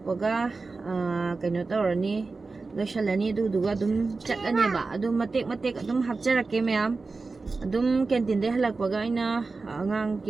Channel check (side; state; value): left; quieter; 3.9 dB